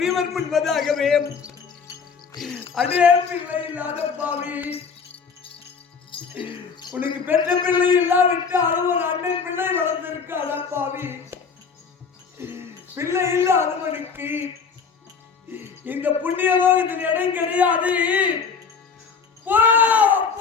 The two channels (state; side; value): quieter; right; 5.7 dB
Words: முன்பதாகவே அதே பிள்ளை இல்லாத பாவி உனக்கு பெற்ற பிள்ளை இல்லாவிட்டாலும் ஒரு அண்ணன் பிள்ளை வளர்ந்திருக்காத பாவி பிள்ளை இல்லாதவனுக்கு இந்த புண்ணிய லோகத்தில் இடம் கிடையாது.